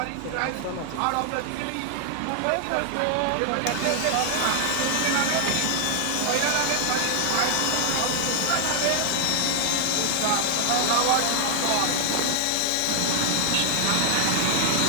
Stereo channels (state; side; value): different; both; correlation 0.00